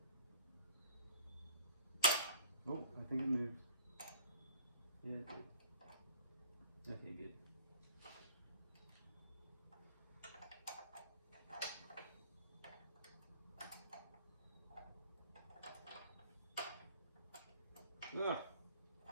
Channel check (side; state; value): both; inverted; correlation -0.46